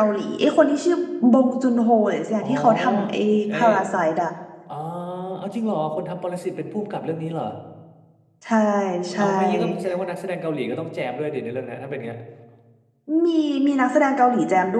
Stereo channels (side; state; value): both; identical; correlation 1.00